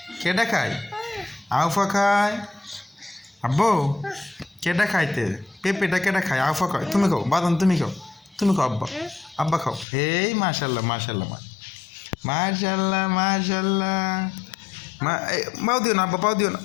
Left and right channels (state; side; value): drops out; right; at 9.9 s